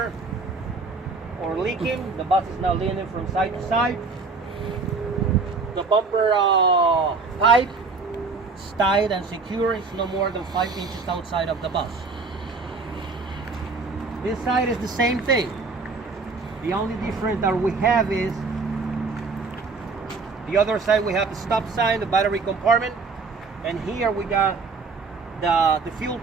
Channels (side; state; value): left; quieter; 4.3 dB